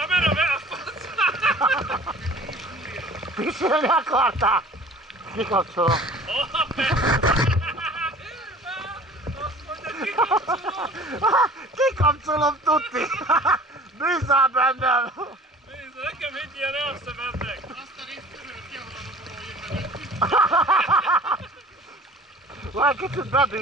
beakadsz! Pisilni akartál? Kikapcsolom. Kikapcsolom, tuti! Bízzál bennem! Nézd, nekem egy ilyen elszemednek! Azt a részt törölt ki, ahol a robogó jön. Majd kicsit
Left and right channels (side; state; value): both; normal; correlation 0.46